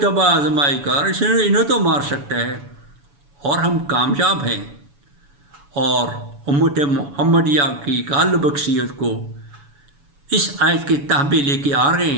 تباہ آزمائی کر، انہیں تو مار سکتا ہے۔ اور ہم کامیاب ہیں، اور امت محمدیہ کی غالب اکثریت کو اس آیت کے تحبے لے کے آ رہے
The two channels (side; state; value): left; late; 7.0 ms